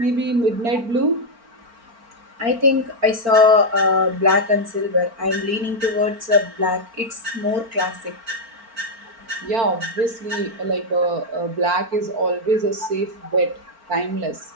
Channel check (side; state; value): left; late; 4.4 ms